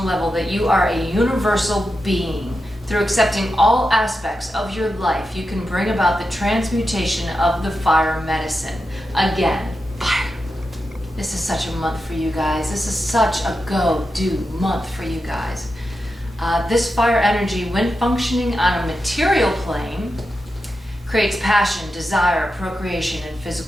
level that you are a universal being. Through accepting all aspects of your life, you can bring about the transmutation of the fire medicine. Again, fire. This is such a month for you guys. This is such a go-do month for you guys. This fire energy, when functioning on a material plane, creates passion, desire, procreation, and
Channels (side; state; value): both; normal; correlation 0.89